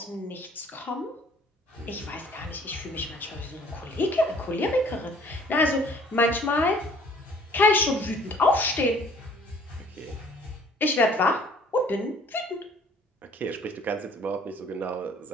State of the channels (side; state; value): both; normal; correlation 0.55